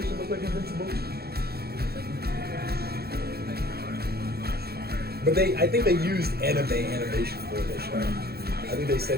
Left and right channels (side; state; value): left; late; 0.46 ms